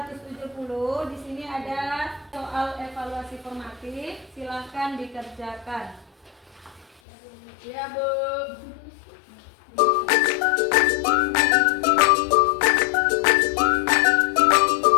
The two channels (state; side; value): drops out; right; at 7.0 s